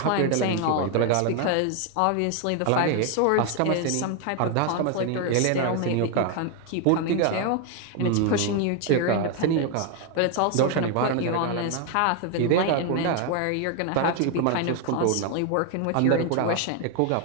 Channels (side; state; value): both; different; correlation 0.01